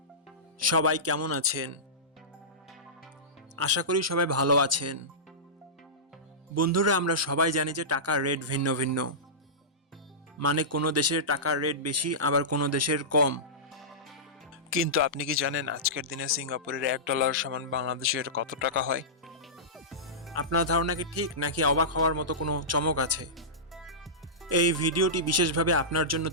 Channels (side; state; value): both; normal; correlation -0.17